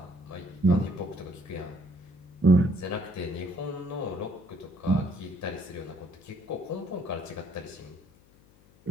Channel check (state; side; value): noise; left; hum, 28 dB below the sound